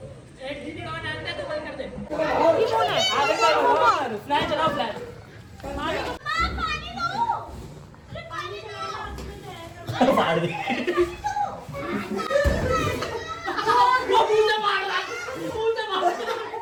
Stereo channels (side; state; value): both; identical; correlation 1.00